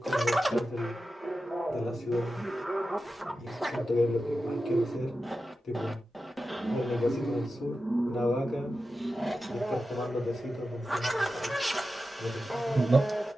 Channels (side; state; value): both; normal; correlation 0.92